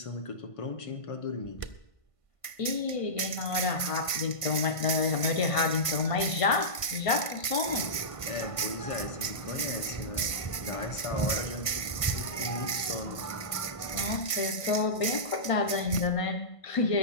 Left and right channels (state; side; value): late; right; 1.5 ms